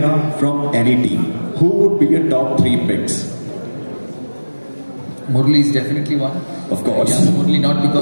from any team. Who would be your top 3 picks? Murli is definitely one. Of course. Yes, Murli, not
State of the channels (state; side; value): inverted; both; correlation -1.00